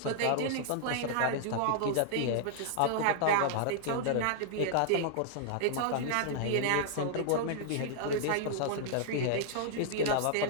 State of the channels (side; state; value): both; different; correlation -0.01